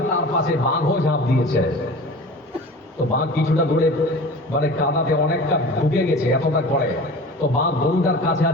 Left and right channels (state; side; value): normal; both; correlation 0.38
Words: তার পাশে বাঘও ঝাঁপ দিয়েছে। তো বাঘ কিছুটা দূরে কাদাতে অনেকটা ঢুকে গেছে, এতটা করে। তো বাঘ গরুটার কাছে